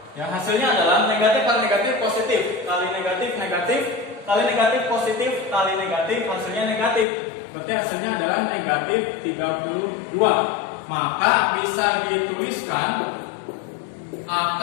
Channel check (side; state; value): right; drops out; at 7.1 s